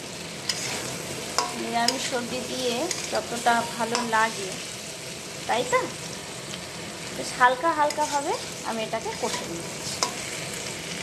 নিরামিষ সবজি দিয়ে যতটা ভালো লাগে, তাই তো? বেশ হালকা হালকাভাবে আমি এটাকে কষে নিচ্ছি।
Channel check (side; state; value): both; identical; correlation 1.00